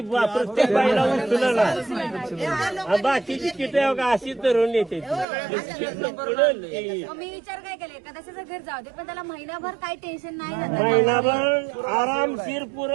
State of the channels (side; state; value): left; drops out; at 5.2 s